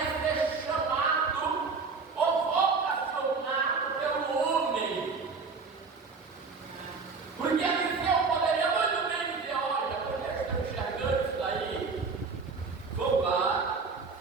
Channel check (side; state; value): left; quieter; 4.6 dB